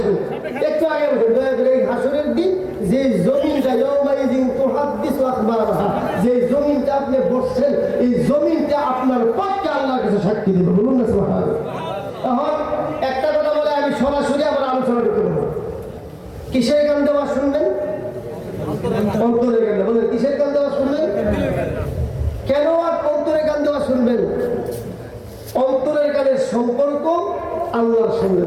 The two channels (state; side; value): identical; both; correlation 1.00